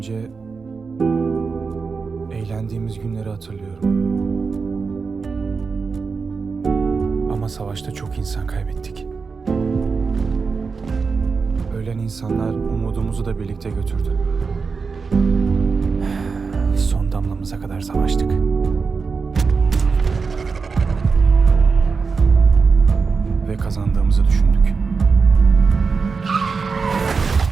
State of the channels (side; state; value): left; quieter; 4.9 dB